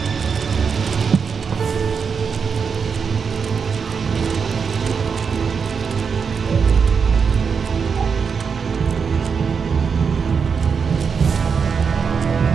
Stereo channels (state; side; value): quieter; left; 6.0 dB